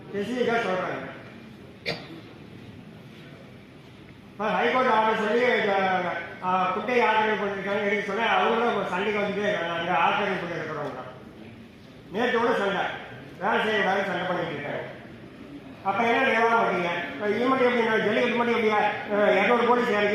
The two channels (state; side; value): identical; both; correlation 1.00